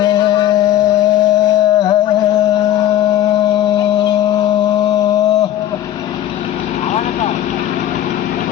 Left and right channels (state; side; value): quieter; right; 12.2 dB